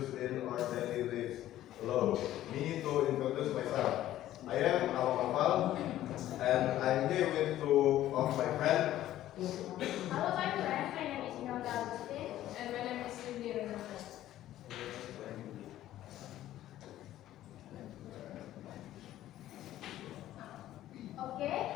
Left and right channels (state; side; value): quieter; right; 13.5 dB